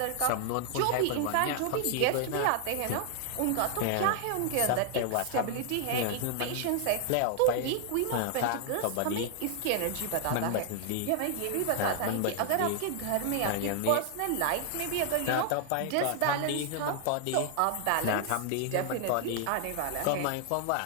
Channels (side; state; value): both; different; correlation 0.00